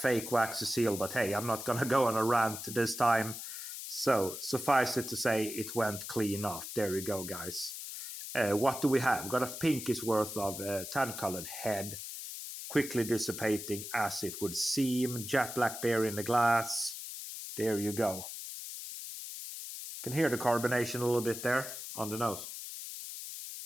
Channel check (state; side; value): noise; left; hiss, 8 dB below the sound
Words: waxy seal, but hey, I'm not going to go on a rant this time. So, suffice it to say, it went clean off. There we go, guys. What do we have? We've got a pinkish worth of tan-colored head. Quickly dissipating as it would seem. Jet black beer in the glass. There you go. Can hear the carbonation a little bit there on the nose.